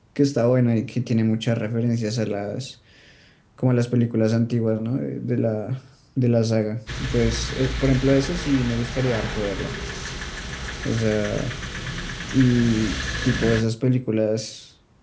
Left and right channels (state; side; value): identical; both; correlation 1.00